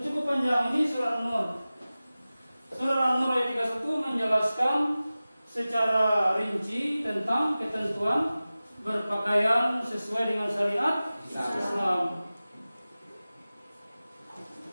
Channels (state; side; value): inverted; both; correlation -0.96